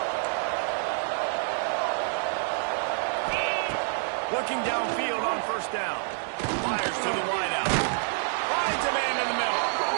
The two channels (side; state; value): left; silent; 60 dB below the other